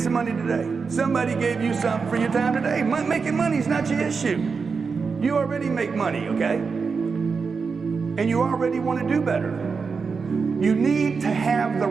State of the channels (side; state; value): left; quieter; 5.1 dB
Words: some money today? Somebody gave you something for your time today. Making money is not your issue. You already make money, okay? And you already want to do better. You need to have the